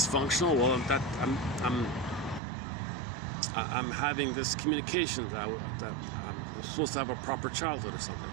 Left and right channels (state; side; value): drops out; left; at 2.4 s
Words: well, I'm having this communication that I'm supposed to have a proper childhood or something.